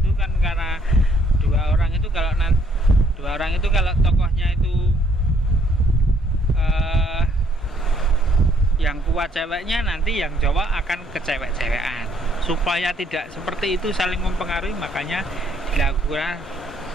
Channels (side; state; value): both; normal; correlation 0.67